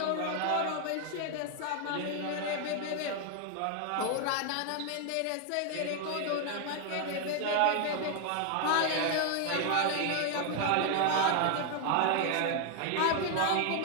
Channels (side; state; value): both; different; correlation 0.01